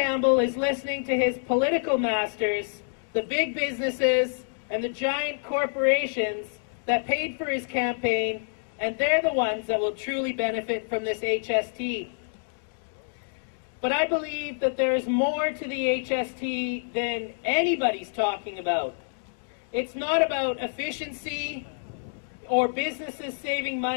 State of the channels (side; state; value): right; silent; digital silence